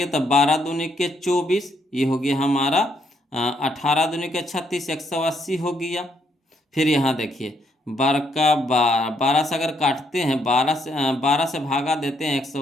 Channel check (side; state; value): both; normal; correlation 0.73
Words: तब 12 दूनी के 24, ये हो गया हमारा 18 दूनी के 36, 180 हो गया। फिर यहाँ देखिए 12 का 12 से अगर काटते हैं, 12 से भागा देते हैं